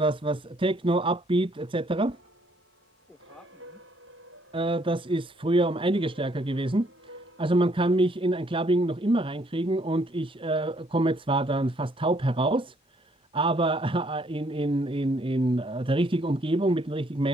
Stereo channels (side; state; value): both; normal; correlation 0.67